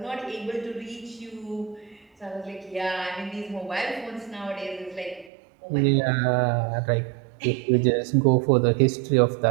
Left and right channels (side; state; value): left; drops out; at 5.3 s